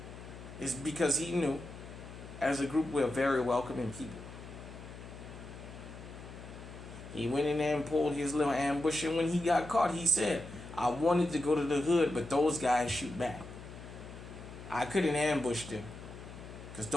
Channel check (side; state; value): left; noise; hum, 14 dB below the sound